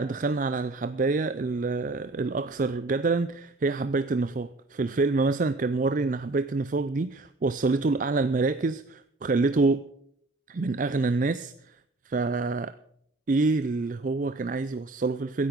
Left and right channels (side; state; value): left; quieter; 3.1 dB